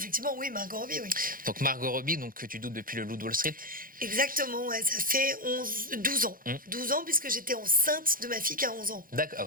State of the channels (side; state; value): left; late; 0.41 ms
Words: oui, Margot Robbie, oui. Donc Margot Robbie, donc, que tu doutes depuis le Loup de Wall Street. Exactement, ouais, ça fait 12 ans. 12 ans, puisque j'étais enceinte de ma fille qui a 11 ans. D'accord, ah